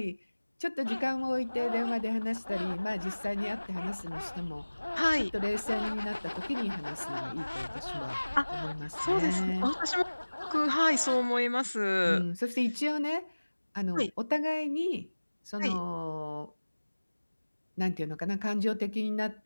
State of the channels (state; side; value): inverted; both; correlation -1.00